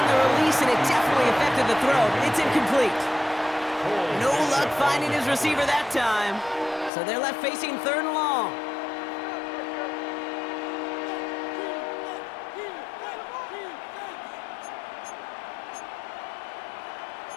the release, and it definitely affected the throw. It's incomplete. No luck finding his receiver that time. So they're left facing 3rd and long.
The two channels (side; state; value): right; drops out; at 6.9 s